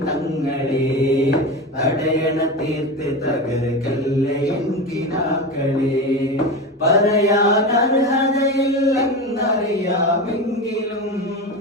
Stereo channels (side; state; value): both; normal; correlation 0.23